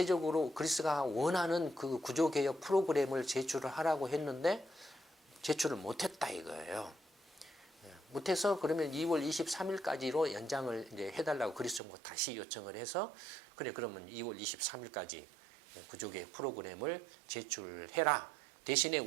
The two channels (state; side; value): drops out; left; at 11.8 s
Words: 그리스가 원하는 그 구조개혁 프로그램을 제출을 하라고 했는데 제출을 못했다 이거예요. 못해서 그러면 2월 23일까지로 연장을 이제 해달라고 그리스 정부가 다시 요청을 해서 그래 그러면 2월 23일까지 구조개혁 프로그램을 제출해라. 대신에